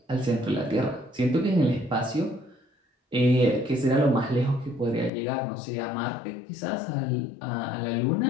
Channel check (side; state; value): right; drops out; at 5.1 s